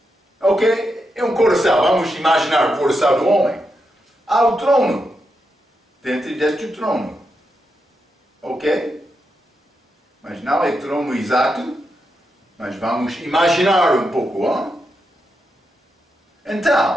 ok? É um coração, vamos imaginar o coração do homem. Há o trono, dentro deste trono. Ok? Mas não é trono exato, mas vamos imaginar um pouco,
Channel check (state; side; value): normal; both; correlation 0.85